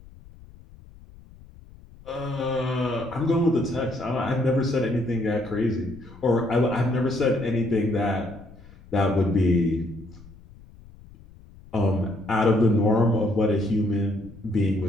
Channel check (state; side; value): noise; left; rumble, 22 dB below the sound